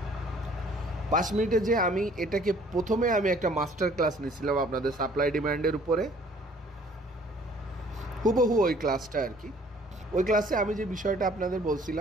5 মিনিটে যে আমি এটাকে প্রথমে আমি একটা মাস্টার ক্লাস নিয়েছিলাম আপনাদের সাপ্লাই ডিমান্ডের উপরে, হুবহু ওই ক্লাসটা আর কি। ওই ক্লাসে আমি যে বিষয়টা আপনাদের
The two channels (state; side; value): normal; both; correlation 0.56